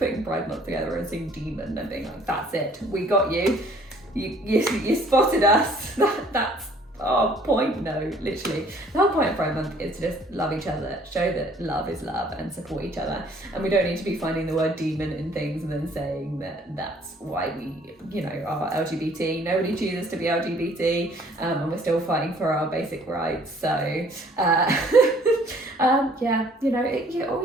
Pride Month together and seeing Demon and being like, that's it, we got you. You spotted us. That's our point. No, literally. The whole point of Pride Month is to just love each other, show that love is love and support each other. And we don't need to be finding the word demon in things and then saying that that's why we, are LGBT. Nobody chooses to be LGBT, and we're still fighting for our basic rights. So, all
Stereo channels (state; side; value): normal; both; correlation 0.58